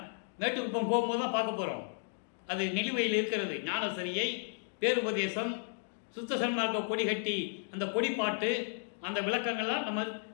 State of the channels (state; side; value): silent; right; digital silence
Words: மேட்டுக்குப்பம் போகும்போது தான் பார்க்க போகிறோம். அது நிலுவையில் இருக்கிறது. ஞானசரியை, பேருபதேசம், சுத்த சன்மார்க்க கொடி கட்டி அந்த கொடிப்பாட்டு, அந்த விளக்கங்கள்லாம் நம்ம